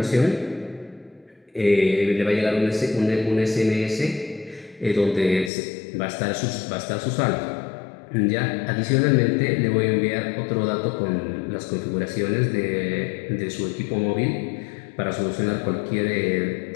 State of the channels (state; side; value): drops out; right; at 5.5 s